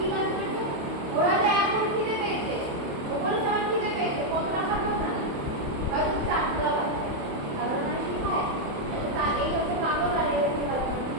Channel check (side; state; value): left; late; 28 ms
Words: কাজ করছে? ওরা যে এখন খিদে পেয়েছে, ও বলছে আমার খিদে পেয়েছে, কতটা খাবো না, হয়তো চারটা বাজছে, কারণ মানে শিখায় তার এই হচ্ছে পাগল আর এই হচ্ছে